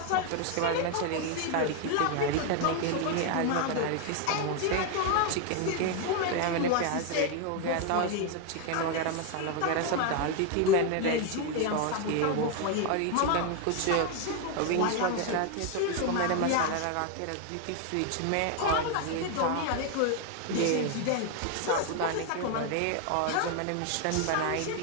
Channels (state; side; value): different; both; correlation 0.01